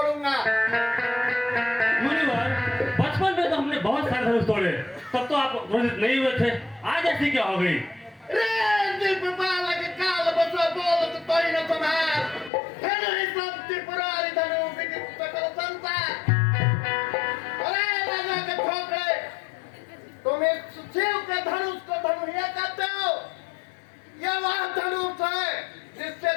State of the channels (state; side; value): drops out; right; at 12.5 s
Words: मुनिवर, बचपन में तो हमने बहुत सारे धनुष तोड़े, तब तो आप क्रोधित नहीं हुए थे, आज ऐसी क्या हो गई? रे दीप बालक काल बसो बोलत तोई न तुम्हार, धनु ही सब त्रिपुरारी धनु विदित सकल संसार। अरे राजा के ठोकरे, तुम इस शिव के धनुष को धनुहिया कहते हो? यह वह धनुष है जिससे